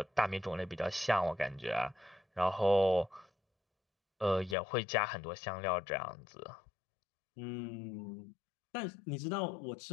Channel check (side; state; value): right; drops out; at 4.5 s